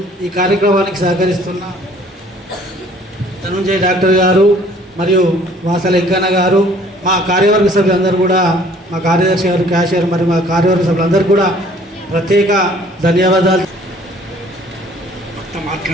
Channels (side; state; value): both; normal; correlation 0.56